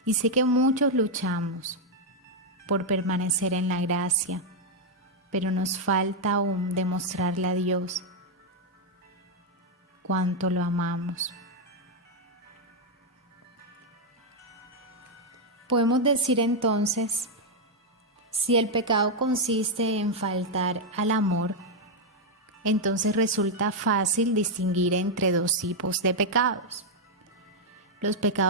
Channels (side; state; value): both; normal; correlation -0.01